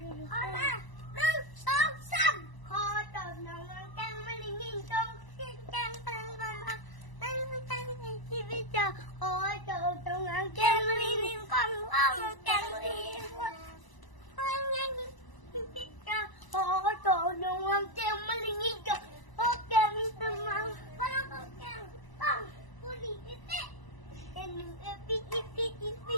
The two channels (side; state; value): right; late; 1.0 ms